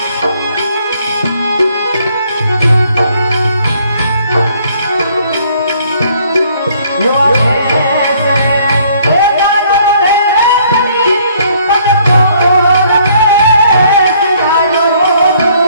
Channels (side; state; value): both; inverted; correlation -0.63